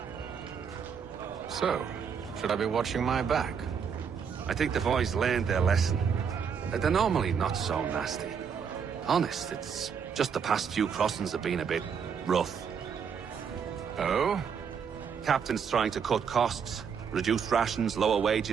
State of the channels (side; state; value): left; quieter; 6.8 dB